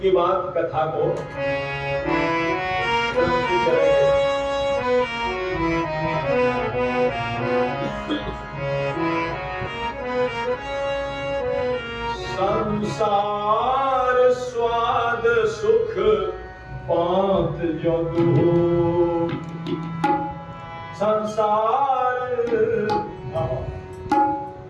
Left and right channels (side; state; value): both; identical; correlation 1.00